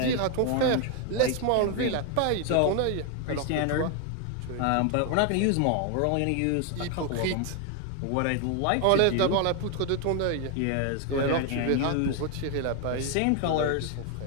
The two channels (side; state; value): both; different; correlation 0.01